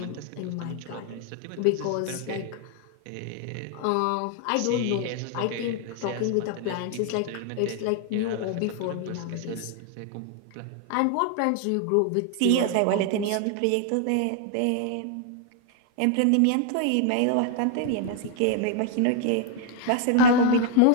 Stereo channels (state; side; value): different; both; correlation 0.00